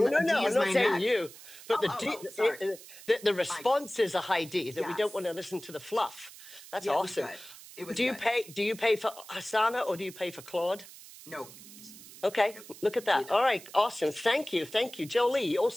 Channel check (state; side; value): noise; right; hiss, 17 dB below the sound